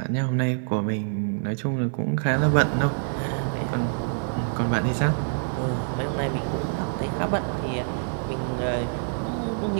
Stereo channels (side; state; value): left; silent; digital silence